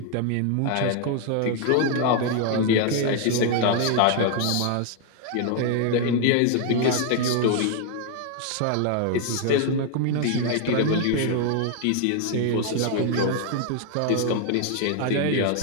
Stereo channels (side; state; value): both; different; correlation 0.01